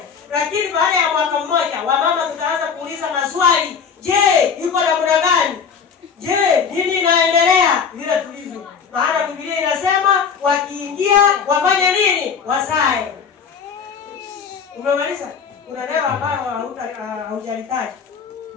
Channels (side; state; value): right; quieter; 6.4 dB